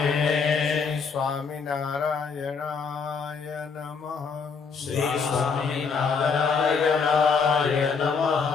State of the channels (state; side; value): quieter; right; 5.4 dB